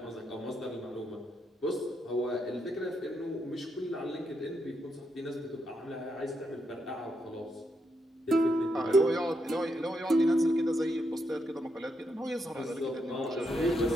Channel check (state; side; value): normal; both; correlation 0.81